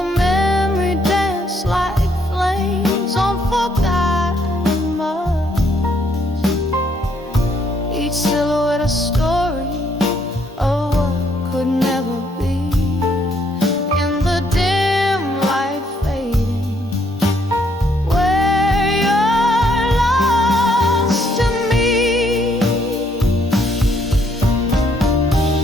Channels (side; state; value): both; normal; correlation 0.70